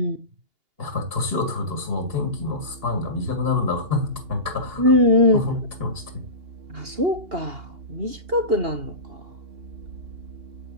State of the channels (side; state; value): left; late; 2.8 ms